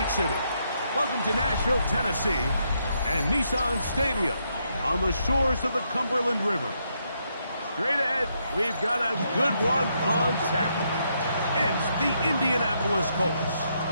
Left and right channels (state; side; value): inverted; both; correlation -0.77